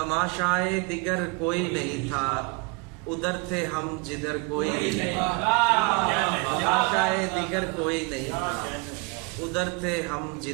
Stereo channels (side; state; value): left; quieter; 29.8 dB